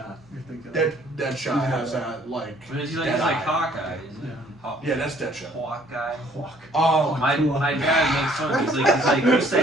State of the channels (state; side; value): normal; both; correlation 0.60